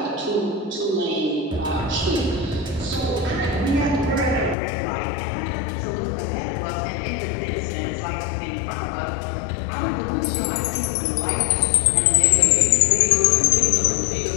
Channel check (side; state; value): right; drops out; at 4.5 s